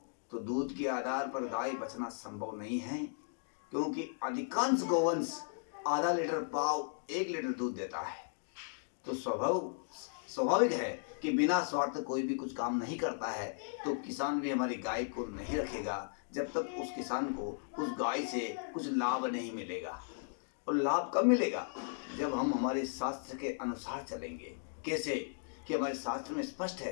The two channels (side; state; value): right; silent; digital silence